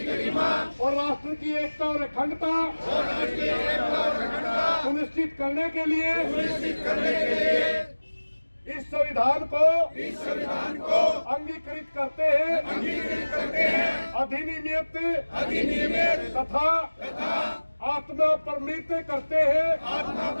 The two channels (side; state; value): both; inverted; correlation -1.00